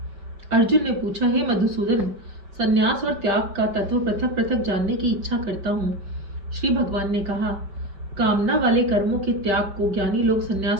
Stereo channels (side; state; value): left; late; 5.5 ms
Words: अर्जुन ने पूछा, हे मधुसूदन, संन्यास और त्याग का तत्व पृथक पृथक जानने की इच्छा करता हूँ। श्री भगवान ने कहा, कामना वाले कर्मों के त्याग को ज्ञानी लोग